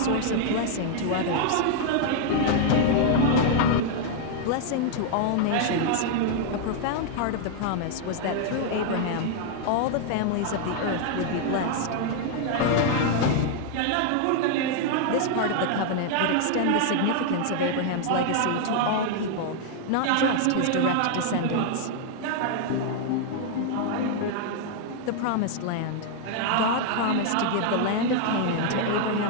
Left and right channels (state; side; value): different; both; correlation 0.00